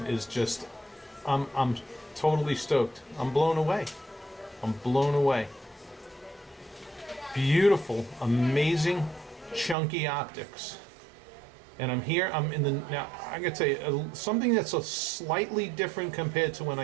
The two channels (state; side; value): drops out; left; at 9.8 s